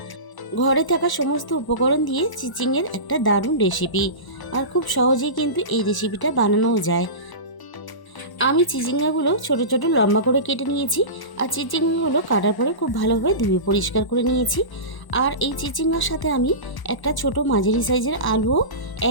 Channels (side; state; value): right; late; 1.0 ms